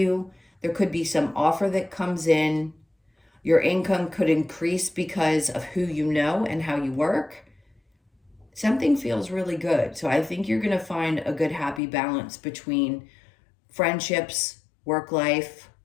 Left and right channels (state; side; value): drops out; right; at 11.8 s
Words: There could be some offer that comes in. Your income could increase because of who you know and how you work. Something feels really good. So I think you're going to find a good, happy balance between friendships, work life,